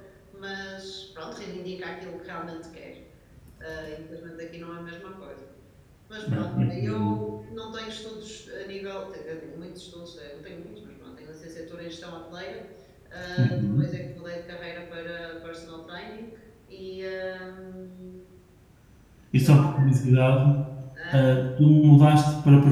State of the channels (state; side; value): identical; both; correlation 1.00